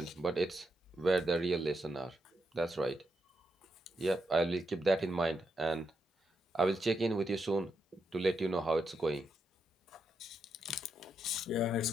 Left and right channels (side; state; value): both; normal; correlation 0.83